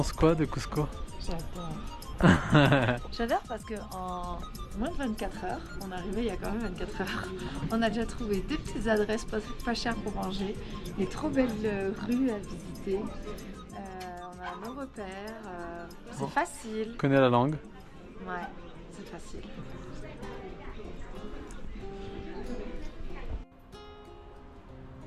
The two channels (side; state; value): both; identical; correlation 1.00